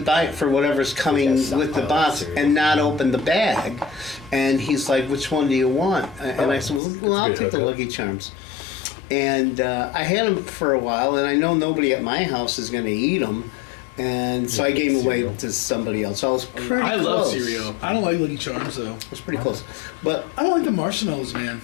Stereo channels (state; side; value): drops out; right; at 6.8 s